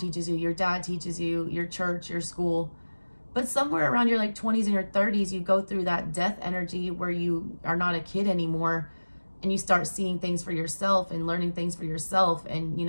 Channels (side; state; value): both; inverted; correlation -1.00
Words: you, your dad teaches you, your church, your school. But somewhere around your 20s and your 30s, you go through that death energy where you are not a kid anymore, and you start seeing things for yourself and learning things for yourself, and